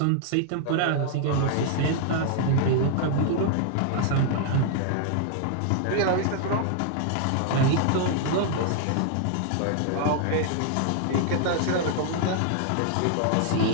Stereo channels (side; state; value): both; different; correlation -0.01